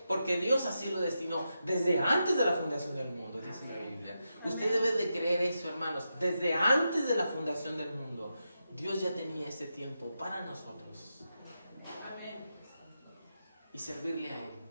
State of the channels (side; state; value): both; inverted; correlation -0.87